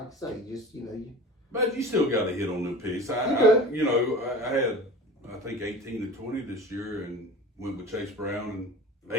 I say, you But you still got to hit on them picks. I had, I think 18 to 20 this year, and went with Chase Brown and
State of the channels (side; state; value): both; normal; correlation 0.38